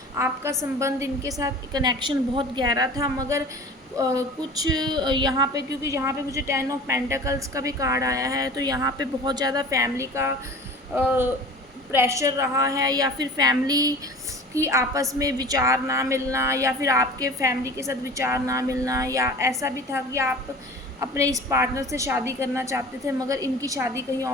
आपका संबंध इनके साथ, कनेक्शन बहुत गहरा था, मगर कुछ यहाँ पे, क्योंकि यहाँ पे मुझे 10 ऑफ पेंटिकल्स का भी कार्ड आया है, तो यहाँ पे बहुत ज़्यादा फैमिली का प्रेशर रहा है, या फिर फैमिली की आपस में विचार ना मिलना, या फिर आपके फैमिली के साथ विचार ना मिलना, या ऐसा भी था कि आप अपने इस पार्टनर से शादी करना चाहते थे, मगर इनकी शादी कहीं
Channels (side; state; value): both; normal; correlation 0.40